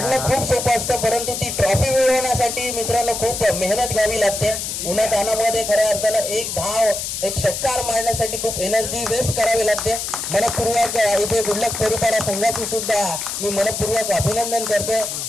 खूप सोपं असतं, परंतु ती ट्रॉफी मिळवण्यासाठी मित्रांनो खूप मेहनत घ्यावी लागते. उन्हातानामध्ये खऱ्या अर्थानं एक धाव, एक षटकार मारण्यासाठी खूप एनर्जी वेस्ट करावी लागते. मनपूर्वक इथे गुडलक परुहरपाडा संघाचे सुद्धा मी मनपूर्वक अभिनंदन करतोय.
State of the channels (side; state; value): left; noise; hiss, 4 dB below the sound